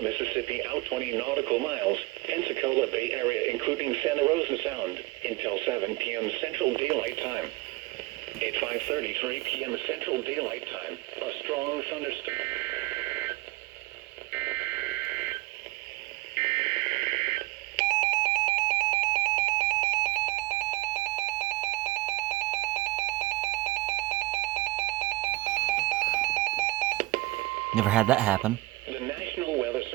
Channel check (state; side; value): quieter; left; 20.7 dB